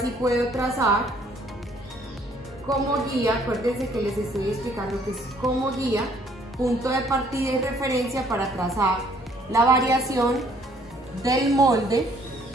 puedo trazar como guía. Acuérdense que les estoy explicando que es como guía, punto de partida y referencia para trazar la variación del molde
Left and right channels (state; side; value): normal; both; correlation 0.62